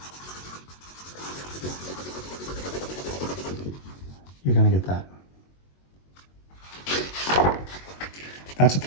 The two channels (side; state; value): right; late; 22 ms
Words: you're going to get that. That's a